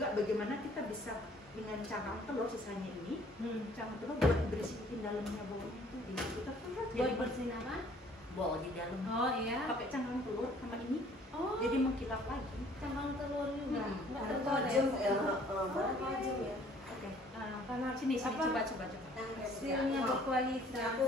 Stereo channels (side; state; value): both; normal; correlation 0.57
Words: bagaimana kita bisa dengan cangkang telur sisanya ini cangkang telur buat bersihin dalamnya bawahnya itu kita Buat bersihin apa? bol di dalam. Oh iya. Pakai cangkang telur sama ini Oh, jadi mengkilap lagi. cangkang telur juga. Enggak Ada telur ya. tajam ya. Mana tajam ya? Oke. Karena sini Apa? coba. Hasilnya berkualitas. Aku